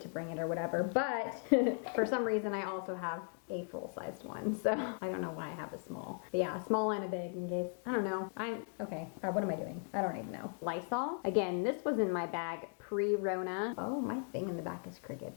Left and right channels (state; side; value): silent; right; 53 dB below the other